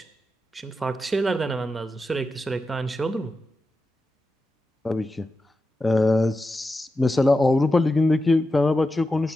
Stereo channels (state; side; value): normal; both; correlation 0.90